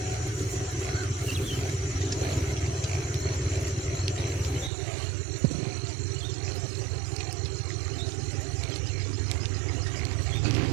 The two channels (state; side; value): drops out; left; at 4.7 s